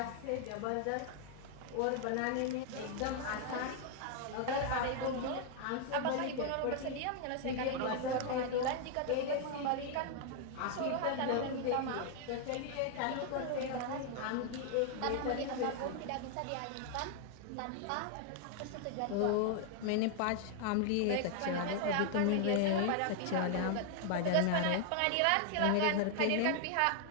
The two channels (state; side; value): different; both; correlation 0.00